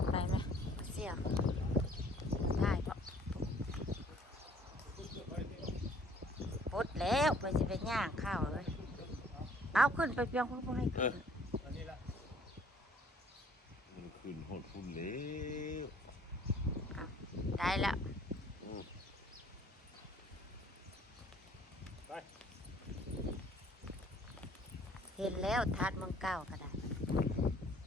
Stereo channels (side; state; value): both; normal; correlation 0.58